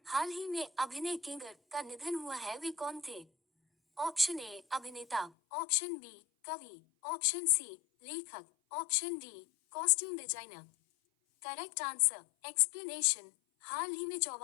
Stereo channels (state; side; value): drops out; right; at 5.3 s